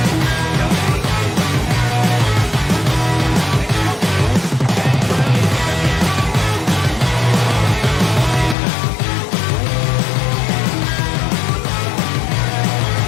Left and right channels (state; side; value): drops out; right; at 8.6 s